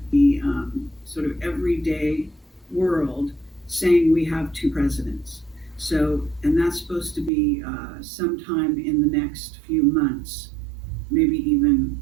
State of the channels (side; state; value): left; drops out; at 7.3 s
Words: the sort of everyday world, saying we have two presidents. So, and that's supposed to be sometime in the next few months, maybe even